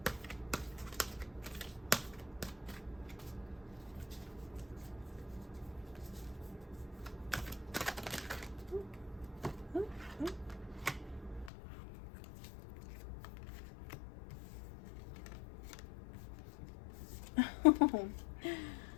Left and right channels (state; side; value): drops out; right; at 11.5 s